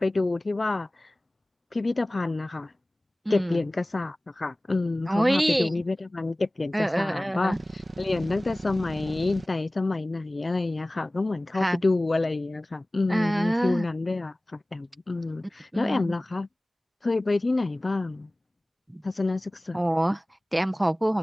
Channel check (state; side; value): normal; both; correlation 0.98